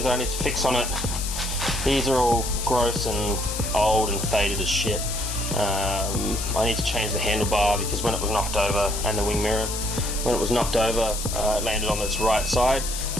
that I need to fix on it. These are all gross and old and faded as shit. I need to change the handlebar because when it was knocked over, and the wing mirror, when it was knocked over, it landed on its right side.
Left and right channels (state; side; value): noise; left; hiss, 6 dB below the sound